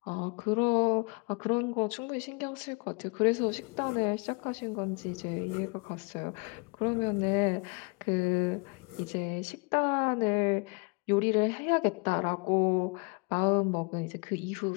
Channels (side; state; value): right; quieter; 31.6 dB